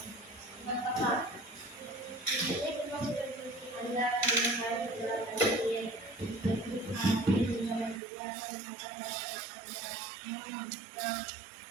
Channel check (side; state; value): left; drops out; at 8.0 s